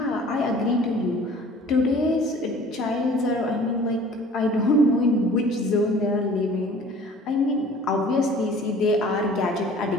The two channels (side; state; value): both; normal; correlation 0.49